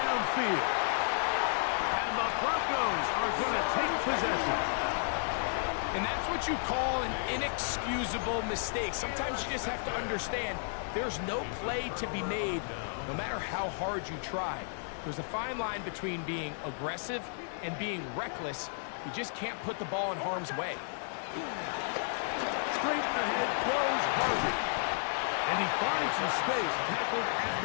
And the Broncos are going to take possession. And that's what you call an inexcusable mistake. Sometimes you just have to understand there's no play to be made, no matter how hard you try. There's a fine line between being aggressive and being reckless. You just can't put the ball in harm's way. Straight ahead goes Harvey. And he finds some space, tackled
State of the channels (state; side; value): silent; right; digital silence